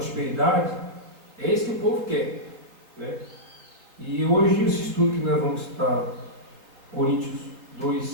É isso que o povo quer, né? E hoje esse estudo que nós vamos estar, Coríntios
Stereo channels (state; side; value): late; left; 3.6 ms